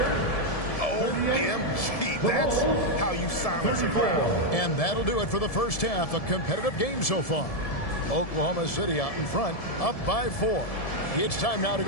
OMG, that's how you silence a crowd. And that'll do it for the first half. A competitive game so far. Oklahoma City out in front, up by 4. It's time now to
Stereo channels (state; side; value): late; right; 1.7 ms